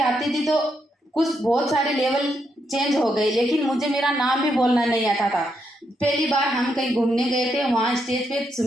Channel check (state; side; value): normal; both; correlation 0.80